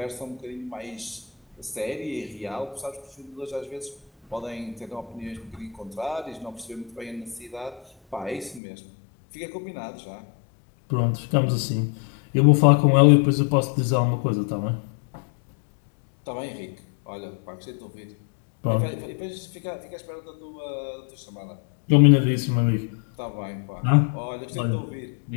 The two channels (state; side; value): drops out; right; at 8.6 s